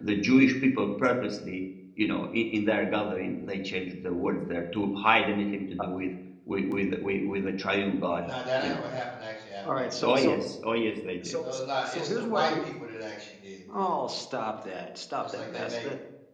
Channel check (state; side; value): identical; both; correlation 1.00